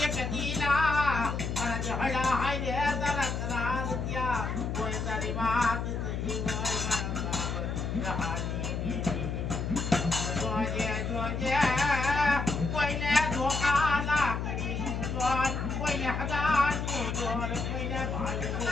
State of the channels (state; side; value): noise; left; hum, 2 dB below the sound